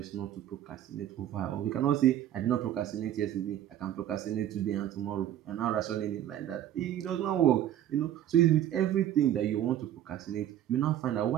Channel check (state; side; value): quieter; left; 11.5 dB